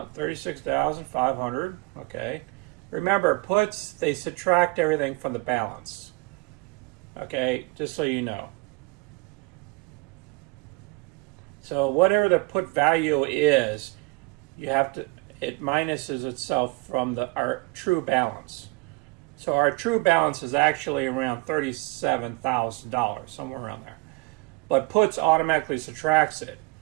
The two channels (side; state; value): left; quieter; 26.1 dB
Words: 36,500. Okay. Remember, puts, they subtract everything from the balance. Okay, just so you know. So whatever the put value is, you have to, it minuses itself from our true balance. So our true balance is actually around $37,000, somewhere around there. But puts automatically subtracts it.